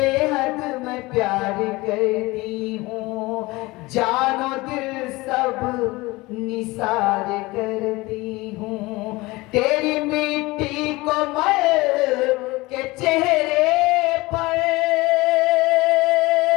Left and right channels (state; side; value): quieter; right; 21.7 dB